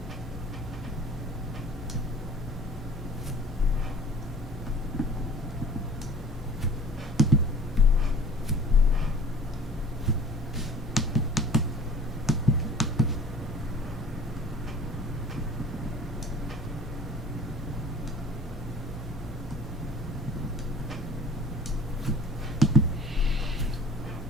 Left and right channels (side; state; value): both; normal; correlation 0.47